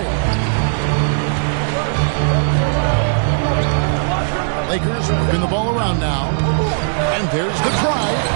Lakers working the ball around now. And there's the drive.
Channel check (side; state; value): left; silent; digital silence